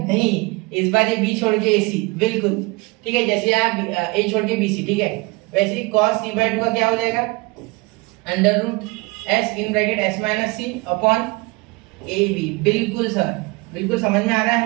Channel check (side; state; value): left; quieter; 25.1 dB